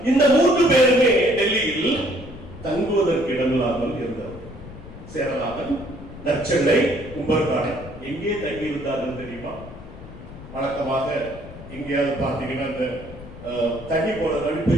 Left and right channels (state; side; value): noise; left; rumble, 15 dB below the sound